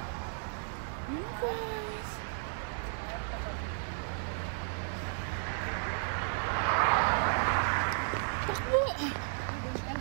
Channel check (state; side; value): silent; left; digital silence